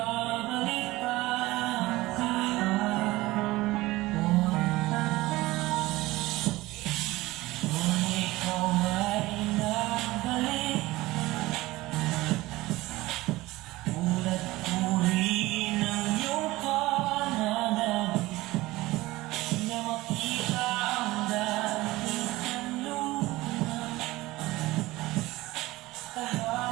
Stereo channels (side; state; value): left; quieter; 19.0 dB